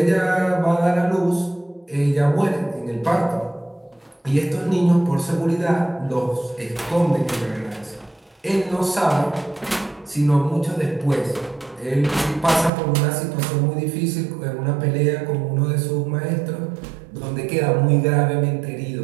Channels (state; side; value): drops out; left; at 12.7 s